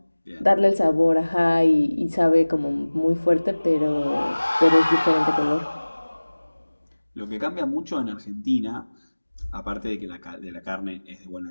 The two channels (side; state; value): both; inverted; correlation -1.00